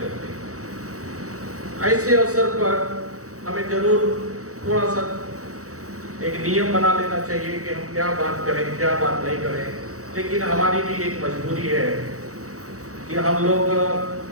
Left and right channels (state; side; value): late; left; 0.65 ms